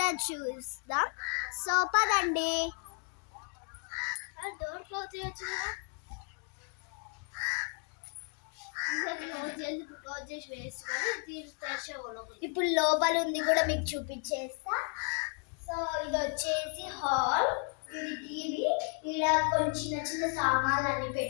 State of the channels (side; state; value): right; quieter; 36.3 dB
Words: చూస్తాం. సో పదండి. డోర్ క్లోజ్ చేయొచ్చు. ఇప్పుడు లోపల ఉంది కూడా మీకు చూపించేస్తా. సో ఇది వచ్చేసి హాల్, ఇది టీవీ, ఇలా కొన్ని చిన్న చిన్న సామాన్లు అన్ని